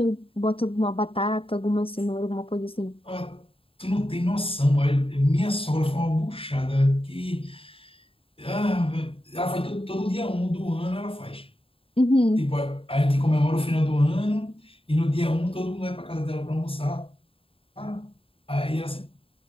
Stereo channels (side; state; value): right; late; 0.27 ms